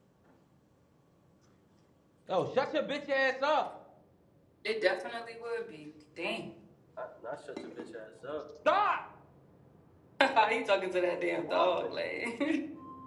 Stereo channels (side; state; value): both; identical; correlation 1.00